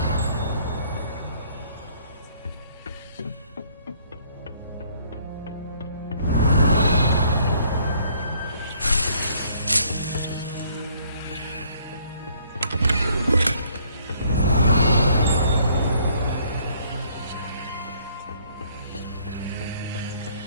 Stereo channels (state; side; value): inverted; both; correlation -0.63